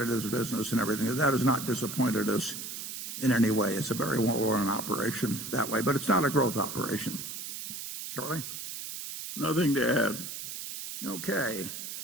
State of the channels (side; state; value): right; noise; hiss, 7 dB below the sound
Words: business and everything. That has not disappointed us in any way. It's a very well-run operation that way, but it's not a growth operation. Charlie? Nothing to add. Okay.